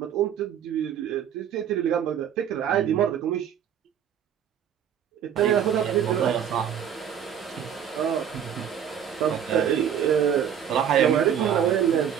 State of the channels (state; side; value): quieter; left; 8.9 dB